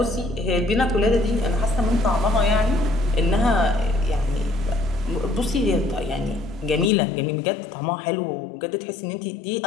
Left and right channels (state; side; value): drops out; right; at 6.9 s